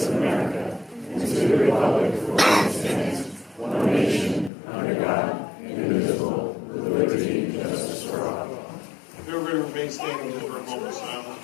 of America and to the republic for which it stands, one nation, under God, indivisible, with liberty and justice for all. Everybody remain standing just for a moment of silence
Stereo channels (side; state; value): right; drops out; at 4.5 s